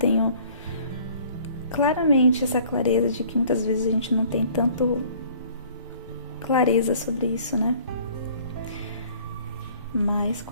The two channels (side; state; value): both; inverted; correlation -0.54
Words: claramente essa clareza de que muitas vezes a gente não tem tanto clareza sobre isso, né? Mas